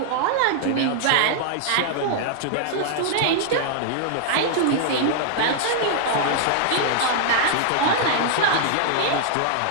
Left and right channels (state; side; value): different; both; correlation -0.01